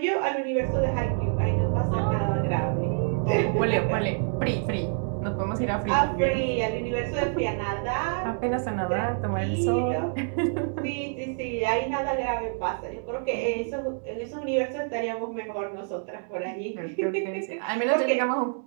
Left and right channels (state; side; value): silent; left; 60 dB below the other